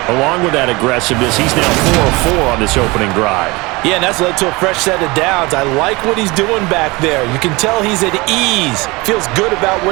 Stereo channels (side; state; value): left; quieter; 23.9 dB